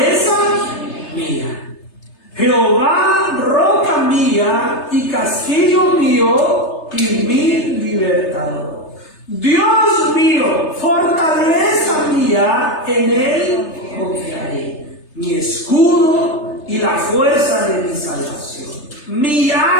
mía. Jehová, roca mía y castillo mío y mi libertador. Dios mío, fortaleza mía, en él confiaré. Mi escudo y la fuerza de mi salvación. Mi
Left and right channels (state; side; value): late; right; 3.3 ms